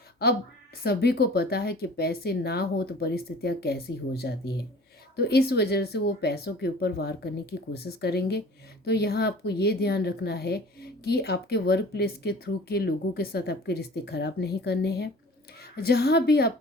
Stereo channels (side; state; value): both; normal; correlation 0.45